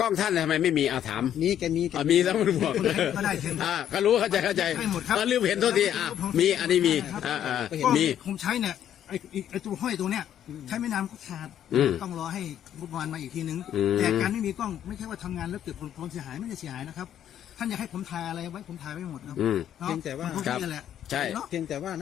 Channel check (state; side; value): quieter; right; 10.4 dB